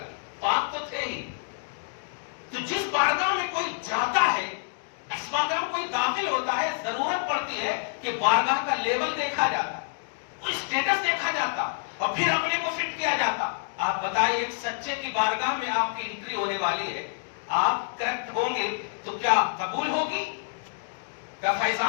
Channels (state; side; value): silent; right; digital silence